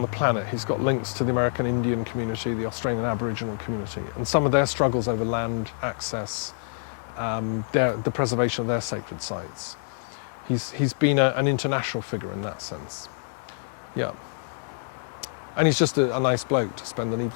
the planet. He's got links to the American Indian community, the Australian Aboriginal community, and some of their struggles over land access, the preservation of their sacred sites. He's been an international figure in that sense. Yeah. And he's just a nice bloke to spend an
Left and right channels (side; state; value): right; silent; digital silence